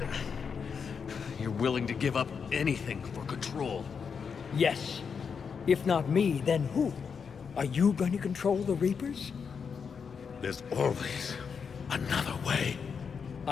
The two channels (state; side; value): quieter; right; 6.2 dB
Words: You're willing to give up anything for control. Yes. If not me, then who? Are you going to control the Reapers? There's always another way.